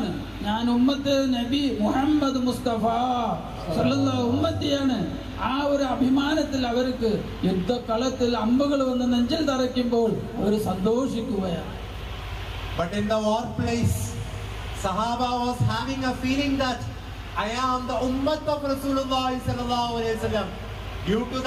ഞാൻ ഉമ്മത്ത് നബി മുഹമ്മദ് മുസ്തഫ സല്ലല്ലാഹു ഉമ്മത്തിയാണ്, ആ ഒരു അഭിമാനത്തിൽ അവർക്ക് യുദ്ധക്കളത്തിൽ അമ്പുകൾ വന്ന് നെഞ്ചിൽ തറയ്ക്കുമ്പോൾ അവർ സന്തോഷിക്കുകയാണ്. But in the war place, Sahaba was having a feeling that I am the ummah of Rasulullah sallallahu alaihi wasallam. Due to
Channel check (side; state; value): both; identical; correlation 1.00